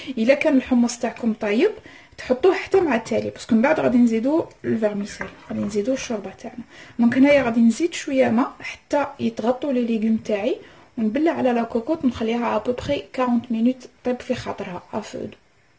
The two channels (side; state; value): both; identical; correlation 1.00